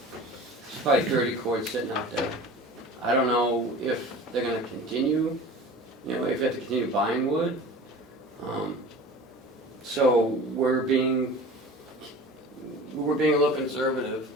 30 cords sitting out there. I don't know if they're gonna continue, if you have to continue buying wood. So we're being a little conservative.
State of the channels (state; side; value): normal; both; correlation 0.39